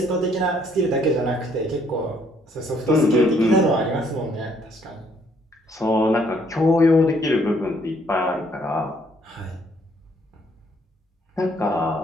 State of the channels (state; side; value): normal; both; correlation 0.66